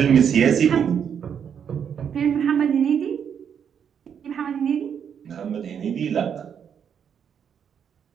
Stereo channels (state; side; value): quieter; left; 7.8 dB